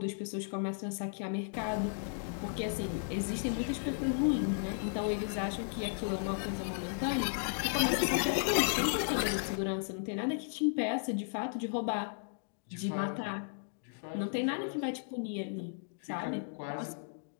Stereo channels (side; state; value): right; silent; digital silence